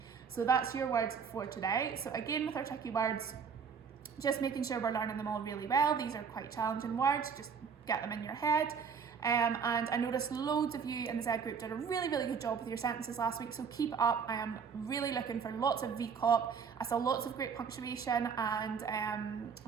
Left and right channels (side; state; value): left; quieter; 6.4 dB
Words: So that's your words for today. So again, with our tricky words, just making sure we're learning them all really well. These are quite challenging words, just get them in your head. And I noticed loads of you in the Z group did a really good job with your sentences last week, so keep it up. I am really looking for lots of VCOP. I saw lots of great punctuation and